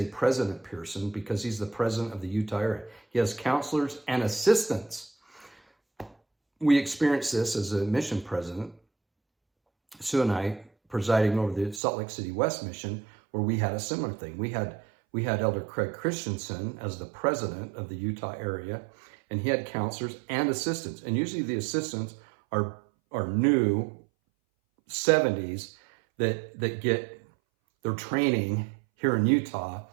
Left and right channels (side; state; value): left; drops out; at 11.8 s